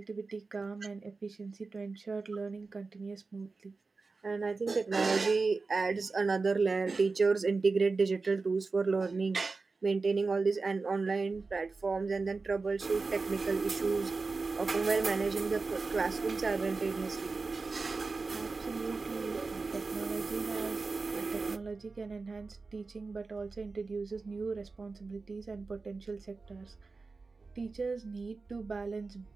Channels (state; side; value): quieter; left; 4.1 dB